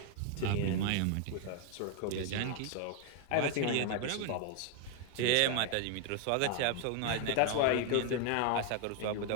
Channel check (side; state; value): both; different; correlation 0.00